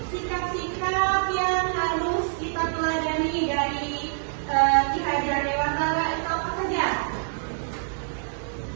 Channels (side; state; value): left; silent; digital silence